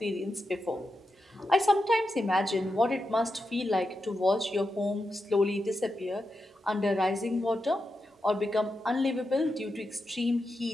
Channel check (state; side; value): normal; both; correlation 0.88